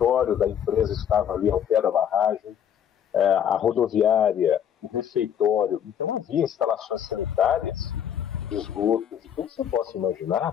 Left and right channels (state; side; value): quieter; right; 9.1 dB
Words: da empresa estava ali ao pé da barragem, a rodoviária, o refeitório, então havia instalações sanitárias, de esgoto, de tudo que você possa